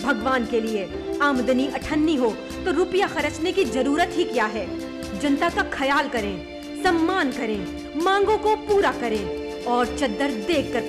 भगवान के लिए आमदनी अठन्नी हो तो रुपया खर्चने की जरूरत ही क्या है? जनता का ख्याल करें, सम्मान करें, मांगों को पूरा करें और चद्दर देख कर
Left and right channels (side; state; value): both; identical; correlation 1.00